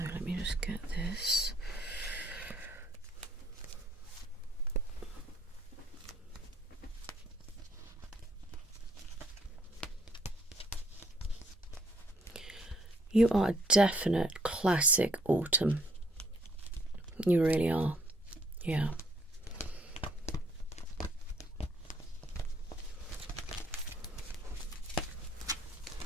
let me just get this. You are a definite classic autumn. You really are. Yeah.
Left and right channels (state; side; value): normal; both; correlation 0.65